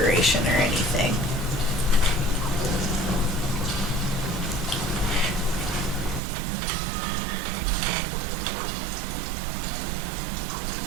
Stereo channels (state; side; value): drops out; left; at 6.2 s